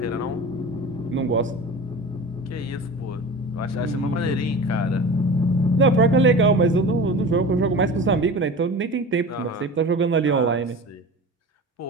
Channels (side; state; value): both; normal; correlation 0.34